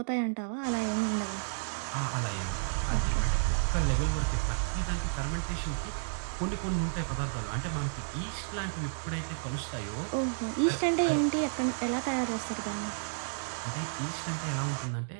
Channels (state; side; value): silent; left; digital silence